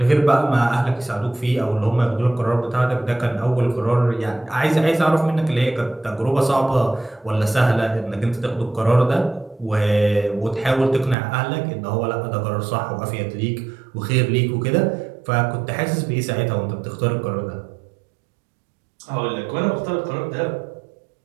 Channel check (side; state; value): left; drops out; at 11.2 s